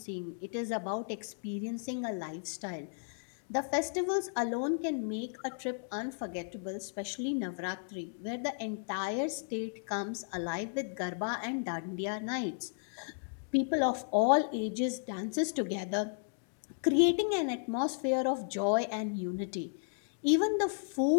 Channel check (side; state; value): right; silent; digital silence